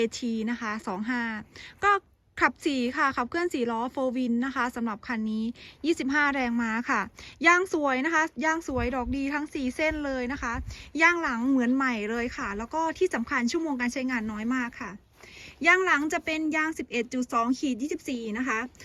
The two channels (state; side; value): identical; both; correlation 1.00